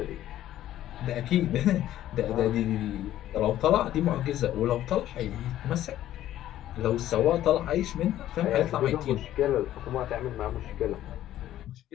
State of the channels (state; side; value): quieter; right; 12.9 dB